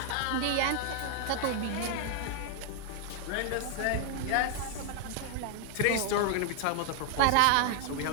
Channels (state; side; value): different; both; correlation 0.00